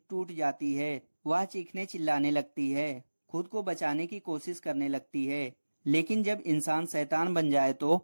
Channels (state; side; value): inverted; both; correlation -1.00